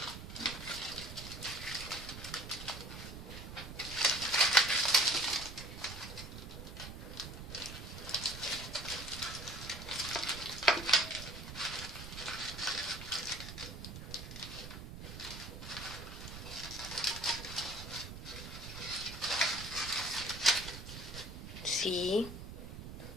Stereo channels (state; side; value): noise; right; rumble, 10 dB below the sound